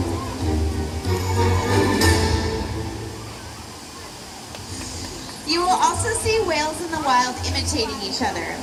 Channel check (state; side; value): identical; both; correlation 1.00